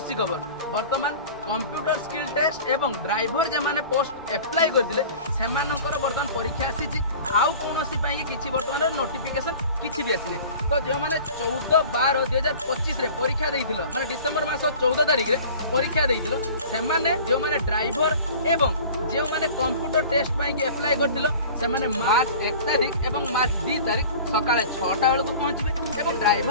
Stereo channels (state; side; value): inverted; both; correlation -0.42